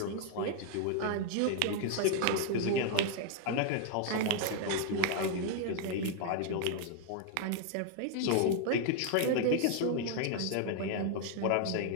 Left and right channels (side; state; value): both; different; correlation 0.00